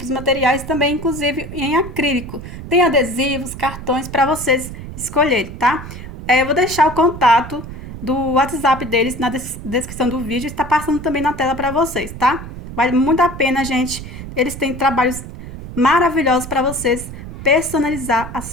de materiais também, inclusive em acrílico. Tem adesivos, cartões para vocês escolherem, tá? Eu vou deixar o contato do WhatsApp deles na descrição do vídeo, está passando também na tela para vocês, tá? Vale muito a pena, gente. Eles têm trabalhos maravilhosos para vocês personalizar as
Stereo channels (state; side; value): noise; right; rumble, 11 dB below the sound